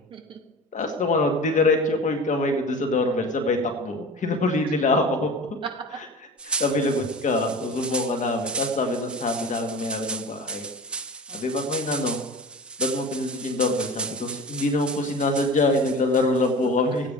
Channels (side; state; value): both; normal; correlation 0.35